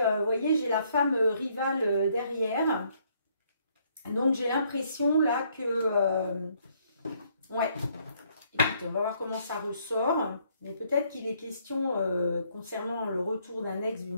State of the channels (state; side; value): inverted; both; correlation -0.68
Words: voyez, j'ai la femme rivale derrière. Donc, j'ai l'impression là que, ouais, écoutez, on va voir comment ça ressort. Mais peut-être qu'il est question, concernant le retour d'un ex,